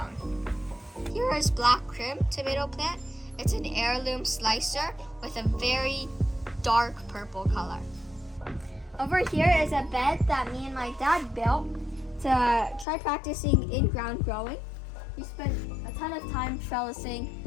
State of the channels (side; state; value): right; drops out; at 12.9 s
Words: Here is Black Crim tomato plant. It's an heirloom slicer with a very dark purple color. Over here is a bed that me and my dad built to try practicing in-ground growing. We spent a ton of time trellising